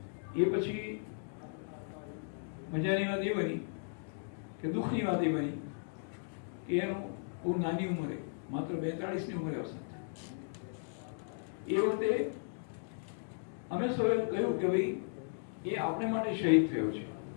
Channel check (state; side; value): silent; right; digital silence